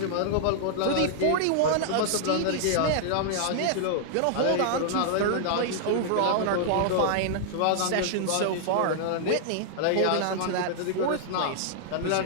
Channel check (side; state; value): both; different; correlation -0.01